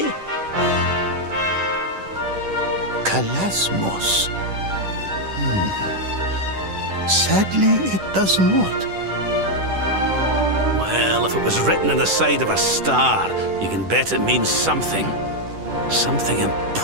Calasmos. Sadly, it does not. Well, if it was written on the side of a star, you can bet it means something. Something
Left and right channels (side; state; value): left; late; 10 ms